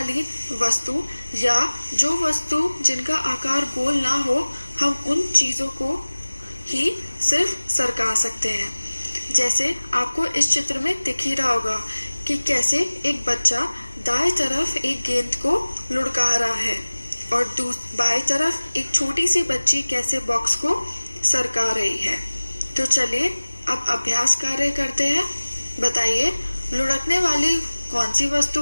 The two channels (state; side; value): inverted; both; correlation -1.00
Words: वस्तु या जो वस्तु जिनका आकार गोल ना हो, हम उन चीजों को ही सिर्फ सरका सकते हैं। जैसे आपको इस चित्र में दिख ही रहा होगा कि कैसे एक बच्चा दाएं तरफ एक गेंद को लुढ़का रहा है और बाएं तरफ एक छोटी सी बच्ची कैसे बॉक्स को सरका रही है। तो चलिए अब अभ्यास कार्य करते हैं। बताइए, लुढ़कने वाली कौन सी वस्तु